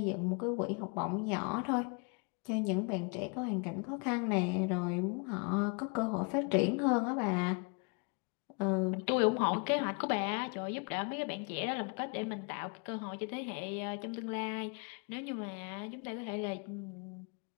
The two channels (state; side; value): quieter; right; 34.4 dB